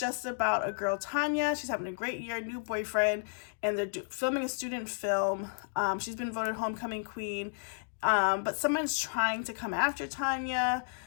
about a girl, Tanya. She's having a great year, new boyfriend, and they're filming a student film. She's been voted homecoming queen, but someone's trying to come after Tanya,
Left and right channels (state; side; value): silent; right; digital silence